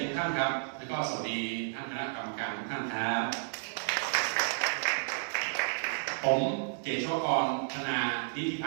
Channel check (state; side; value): silent; left; 56 dB below the other